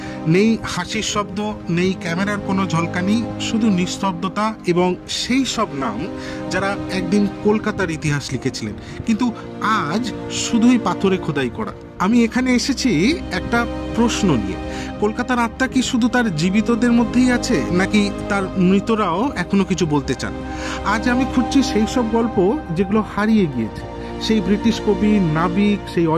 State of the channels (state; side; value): identical; both; correlation 1.00